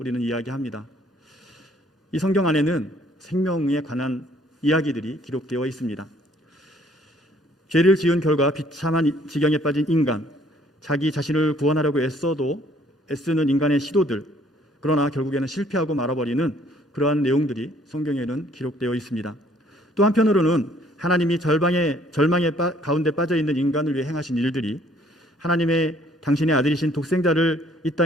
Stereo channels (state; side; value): normal; both; correlation 0.61